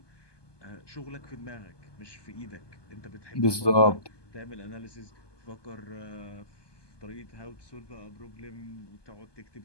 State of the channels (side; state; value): right; late; 1.2 ms